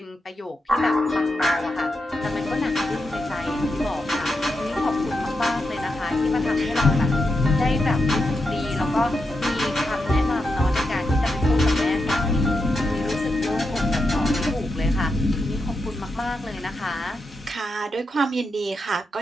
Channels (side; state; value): both; normal; correlation 0.86